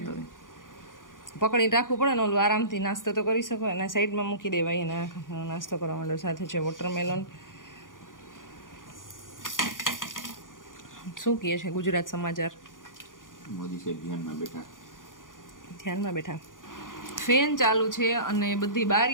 હોય પકડીને રાખવું પડે ને ઓલું આરામથી નાસ્તો તો કરી શકો અને સાઈડમાં મૂકી દેવાય એને નાસ્તો કરવા માંડો સાથે છે વોટરમેલન શું કહે છે ગુજરાત સમાચાર મોદી સાહેબ ધ્યાનમાં બેઠા ફેન ચાલુ છે અને બધી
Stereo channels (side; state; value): right; late; 0.89 ms